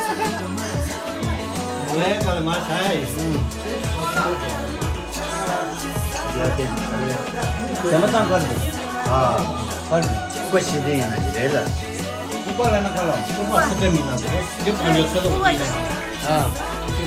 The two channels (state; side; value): identical; both; correlation 1.00